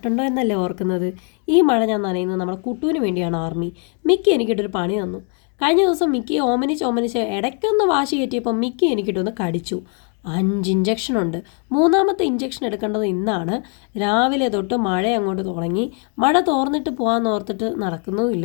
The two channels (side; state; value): right; quieter; 38.2 dB